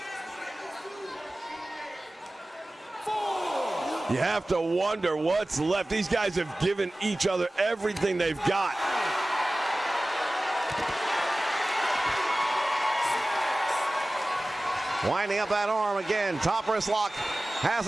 You have to wonder what's left. These guys have given each other everything they've got. Winding up that arm again. Top wrist lock has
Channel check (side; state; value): both; normal; correlation 0.97